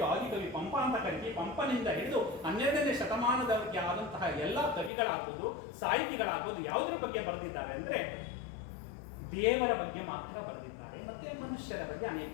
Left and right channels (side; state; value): right; drops out; at 4.9 s